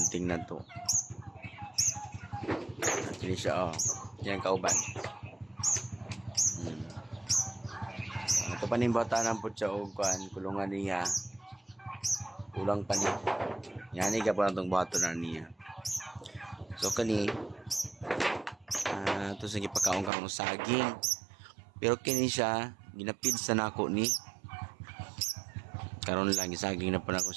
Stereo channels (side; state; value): left; drops out; at 20.1 s